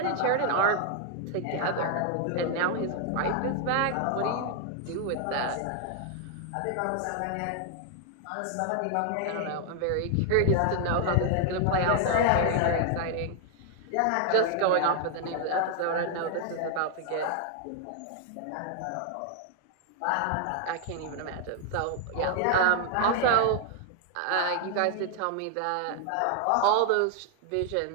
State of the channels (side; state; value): both; different; correlation 0.00